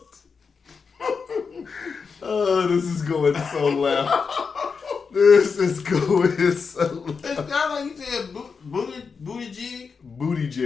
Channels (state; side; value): quieter; right; 5.4 dB